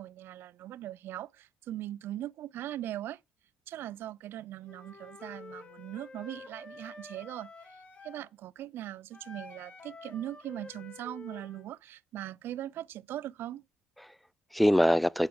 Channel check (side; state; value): both; normal; correlation 0.87